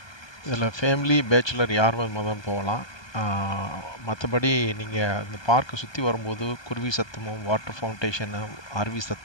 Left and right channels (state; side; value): late; right; 1.2 ms